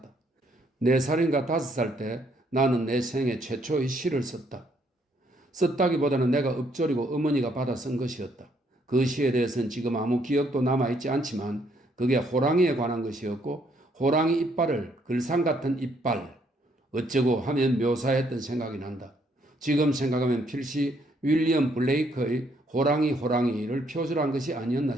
4살인가 5살 때 나는 내 생애 최초의 시를 썼다. 썼다기보다는 내가 읊조리고 어머니가 받아 쓴 것이었다. 그 시에 대해서는 지금 아무 기억도 남아있지 않지만 그게 호랑이에 관한 것이었고 호랑이 이빨을 글상 같은 이빨 어쩌고 하면 묘사했던 생각이 난다. 지금 생각하면 필시 윌리엄 블레이크의 호랑이를 표절한 것이 아니었나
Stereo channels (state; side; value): normal; both; correlation 0.70